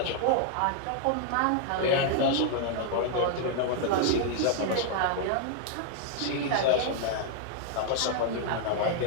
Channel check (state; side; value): different; both; correlation 0.00